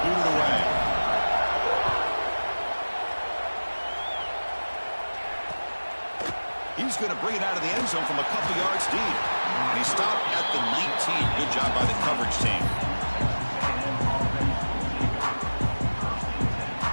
boot it away. He's going to bring it out of the end zone from a couple yards deep. And he stopped at the 19. Good job by the coverage team.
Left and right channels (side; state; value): both; inverted; correlation -1.00